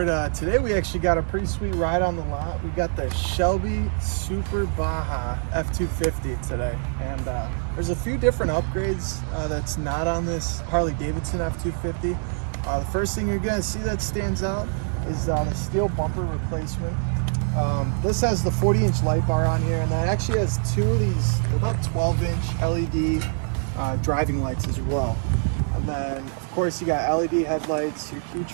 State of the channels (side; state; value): left; silent; 62 dB below the other